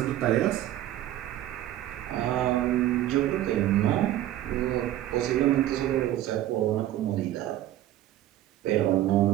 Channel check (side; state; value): left; quieter; 13.5 dB